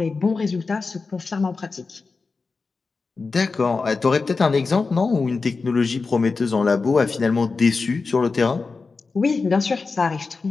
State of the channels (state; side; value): quieter; right; 4.3 dB